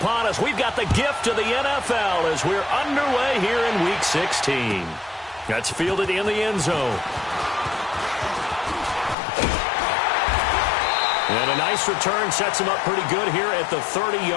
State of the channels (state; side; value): drops out; right; at 9.2 s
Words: upon us. We've got the gift of the NFL as we're underway here in Week 16. That's fielded in the end zone. And a nice return sets him up pretty good here at the